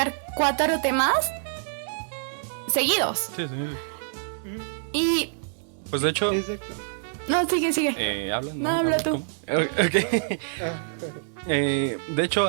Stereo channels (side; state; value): left; silent; digital silence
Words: 4 temas seguidos? Sí, sí. Y... Pues de hecho, Exacto. No, sigue. ¿habla? No, habla tú. Ok. Ah, De hecho,